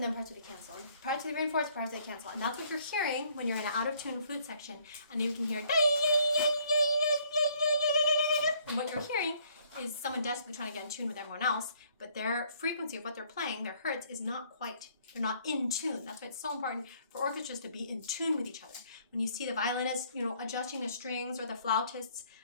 then parts where they cancel. And parts where they reinforce, parts where they cancel. And that's what you're hearing when you're in an out of tune flute section, and you can hear. And what you're hearing is someone desperately trying to get in tune with everyone else, but their frequency of what they're playing, their hertz, is not quite, they're not in tune. That's why it's so important for orchestras to be in tune with each other. When you see the violinists, adjusting the strings, or the flautists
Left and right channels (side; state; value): both; inverted; correlation -0.64